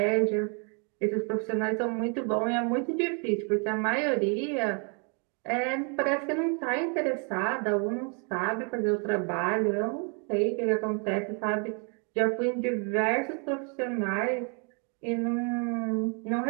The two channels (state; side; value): quieter; left; 37.7 dB